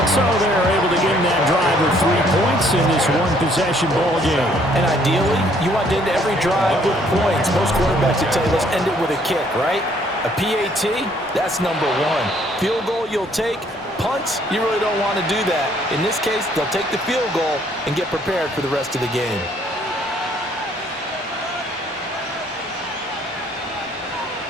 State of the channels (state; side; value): normal; both; correlation 0.64